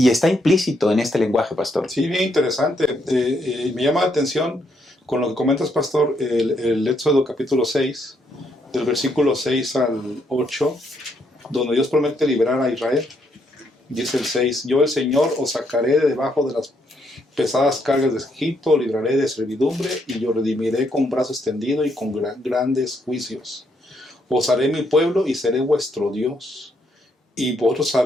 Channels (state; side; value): normal; both; correlation 0.75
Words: está implícito en este lenguaje, Pastor. Sí, bien interesante. Me llama la atención con lo que comentas, Pastor, el Éxodo capítulo 6, del versículo 6 al 8, donde Dios promete liberar a Israel. Dice el 6, yo el Señor os sacaré de debajo de las pesadas cargas de Egipto, libraré de servidumbre y yo redimiré con brazo extendido y con grandes juicios. Os haré mi pueblo y seré vuestro Dios. Y vosotros